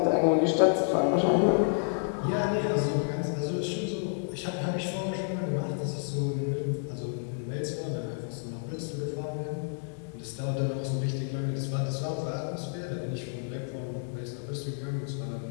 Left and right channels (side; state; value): right; silent; digital silence